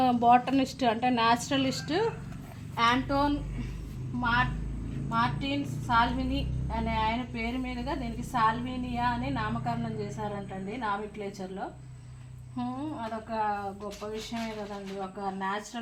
బాటనిస్ట్ అంటే న్యాచురలిస్ట్ యాంటోన్ మార్టిన్ సాల్విని అనే ఆయన పేరు మీదుగా దీనికి సాల్వినియా అని నామకరణం చేశారంటండి నామిక్లేచర్లో. అదొక గొప్ప విషయమే కదండి, ఒక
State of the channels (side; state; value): both; identical; correlation 1.00